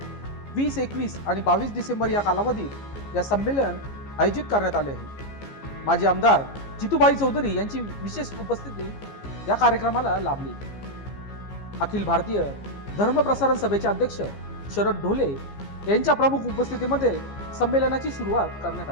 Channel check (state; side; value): late; right; 15 ms